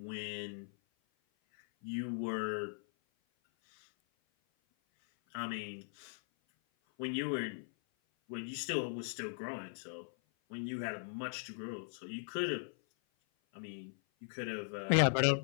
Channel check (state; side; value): silent; right; 52 dB below the other